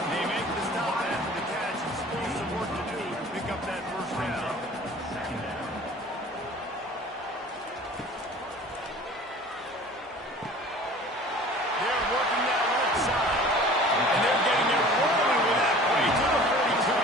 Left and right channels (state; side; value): normal; both; correlation 0.45